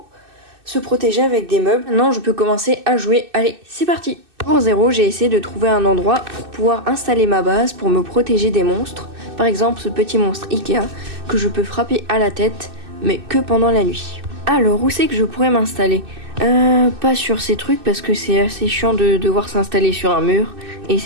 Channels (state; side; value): late; left; 2.6 ms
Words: se protéger avec des meubles. Maintenant, je peux commencer à jouer. Allez, c'est parti! Pour 0, j'ai essayé de trouver un endroit pour pouvoir installer ma base pour me protéger des monstres. Par exemple, ce petit monstre Ikea que je peux frapper à la tête, mais que pendant la nuit. Alors, où c'est que je pourrais m'installer? Pas sur ces trucs parce que c'est assez chiant de devoir s'installer sur un mur et